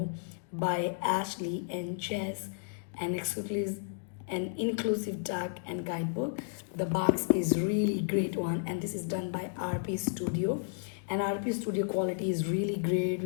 by Ashley and Chess, an inclusive tag and guidebook. The box is really great one, and this is done by RP Studio, and RP Studio quality is really great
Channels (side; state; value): right; silent; digital silence